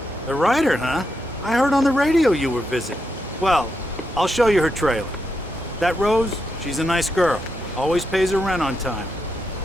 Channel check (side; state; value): both; normal; correlation 0.83